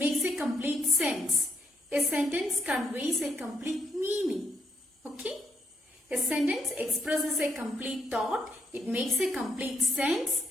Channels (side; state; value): both; normal; correlation 0.77